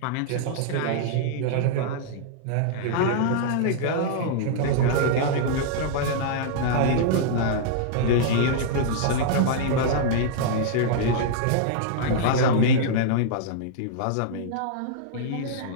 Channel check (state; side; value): different; both; correlation -0.02